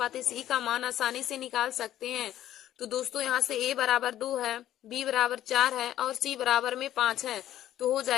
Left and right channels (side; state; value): right; quieter; 12.4 dB